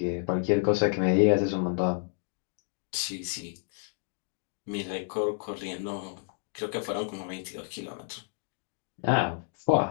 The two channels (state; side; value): silent; right; digital silence